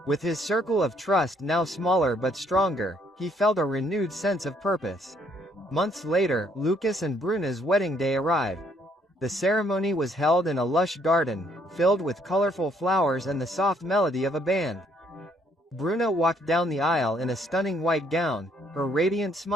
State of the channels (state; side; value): normal; both; correlation 0.68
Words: With his circle of trust now smaller but stronger, he felt a renewed sense of purpose. Months later, Lucas and Bruna's wedding day arrived. The ceremony was held in a lush garden, filled with colorful flowers and the soft melody of a band. Bruna walked down the aisle in a stunning white gown, her radiant